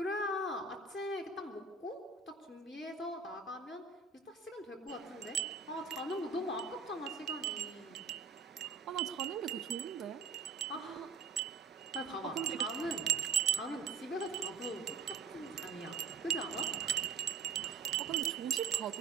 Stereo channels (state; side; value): quieter; left; 4.9 dB